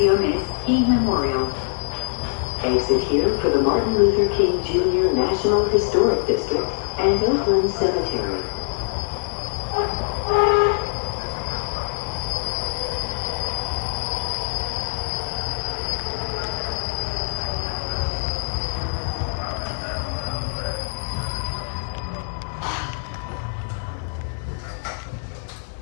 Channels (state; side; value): silent; right; 63 dB below the other